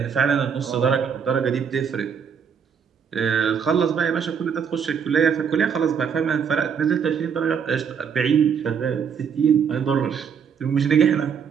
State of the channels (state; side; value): quieter; left; 7.0 dB